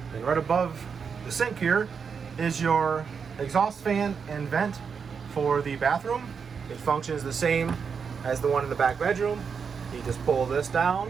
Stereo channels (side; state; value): left; quieter; 6.2 dB